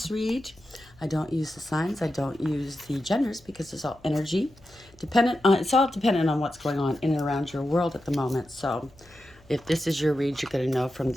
read. I don't use the signs, I don't use the genders because it's all energy. It's all dependent on what's going on in and around your world at the moment. So if this is your read, you're going to know from the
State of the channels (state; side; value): noise; left; hum, 27 dB below the sound